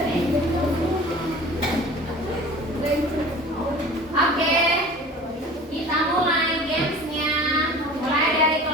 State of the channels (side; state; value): both; normal; correlation 0.41